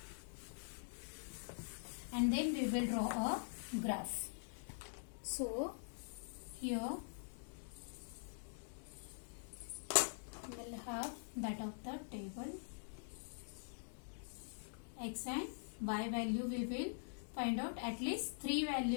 and then we will draw a graph. So here we will have that of the table. X and y value we will find out, at least 3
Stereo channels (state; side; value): silent; right; digital silence